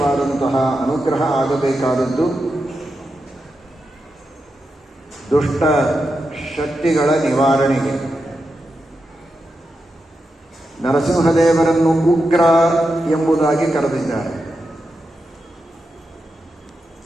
ಅನುಗ್ರಹ ಆಗಬೇಕಾದದ್ದು ದುಷ್ಟ ಶಕ್ತಿಗಳ ನಿವಾರಣೆಗೆ. ನರಸಿಂಹದೇವರನ್ನು ಉಗ್ರ ಎಂಬುದಾಗಿ ಕರೆದಿದ್ದಾರೆ.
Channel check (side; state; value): both; normal; correlation 0.88